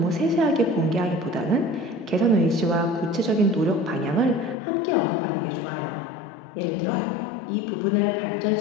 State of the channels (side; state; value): right; drops out; at 4.5 s